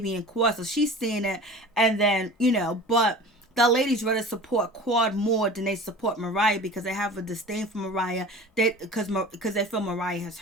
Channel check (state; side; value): normal; both; correlation 0.38